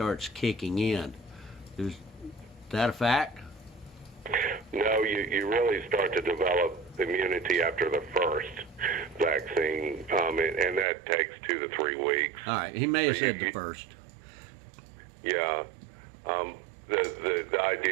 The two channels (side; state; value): left; drops out; at 10.9 s